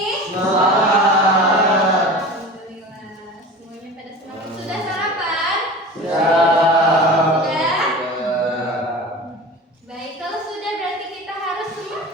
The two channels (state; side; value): normal; both; correlation 0.35